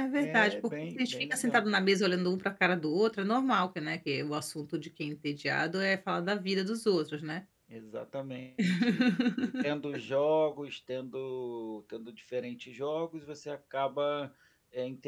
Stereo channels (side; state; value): both; identical; correlation 1.00